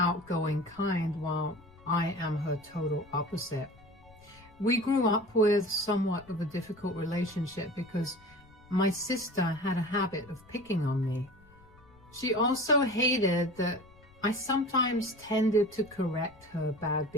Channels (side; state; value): left; noise; rumble, 26 dB below the sound